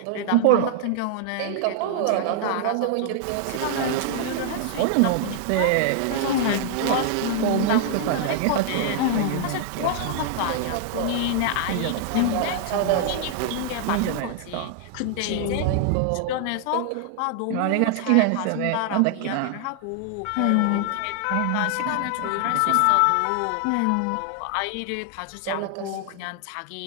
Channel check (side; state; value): both; different; correlation 0.00